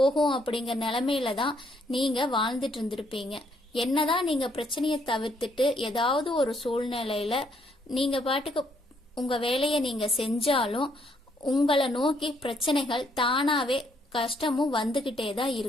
அப்படிங்கிற நிலைமையில தான் நீங்க வாழ்ந்துட்டு இருந்திருப்பீங்க. என்னதான் நீங்க பிரச்சனையை தவிர்த்துட்டு ஏதாவது ஒரு சூழ்நிலையில நீங்க பாட்டுக்கு உங்க வேலையை நீங்க செஞ்சாலும் உங்களை நோக்கி பிரச்சனைகள் தானாவே கஷ்டமும் வந்துகிட்டே தான்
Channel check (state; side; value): normal; both; correlation 0.70